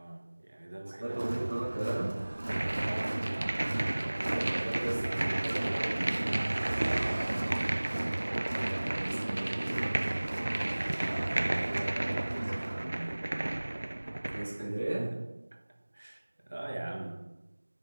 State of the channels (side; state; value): both; inverted; correlation -1.00